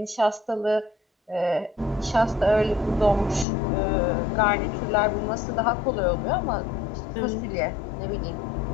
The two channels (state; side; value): drops out; right; at 3.5 s